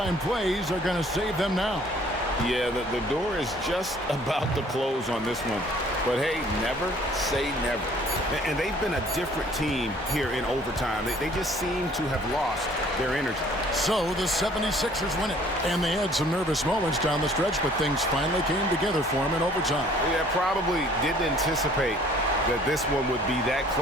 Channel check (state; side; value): normal; both; correlation 0.56